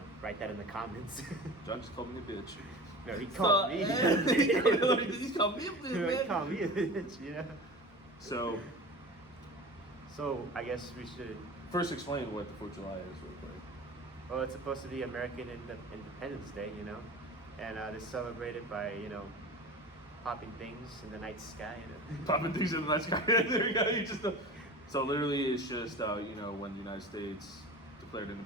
write that in the comments. John just called me a bitch. No, he called me. He called me a bitch, He man. called me a bitch, So I guess we should. First explain what the 4th of July is real quick. Well, it's supposed to be American Independence Day, and it's celebrated by, popping things in the night sky. Popping things in the night sky. There you go. So literally it's just, when the United States declared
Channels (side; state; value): both; normal; correlation 0.35